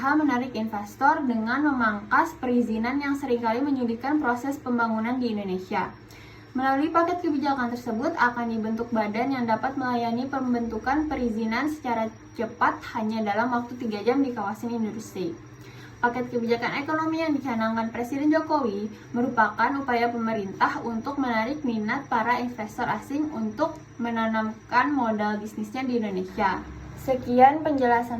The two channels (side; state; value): both; identical; correlation 1.00